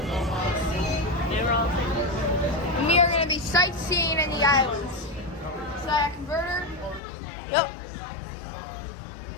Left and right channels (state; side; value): drops out; right; at 7.0 s